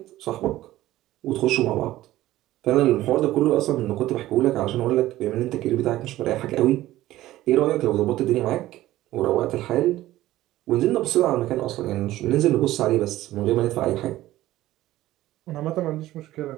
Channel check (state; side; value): quieter; left; 15.4 dB